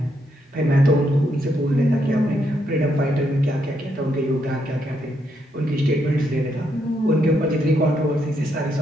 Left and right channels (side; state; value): both; normal; correlation 0.77